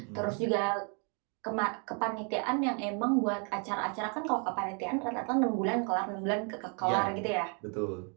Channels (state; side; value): quieter; left; 38.0 dB